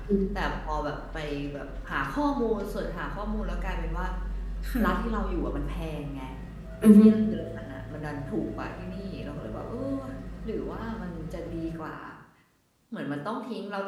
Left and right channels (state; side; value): identical; both; correlation 1.00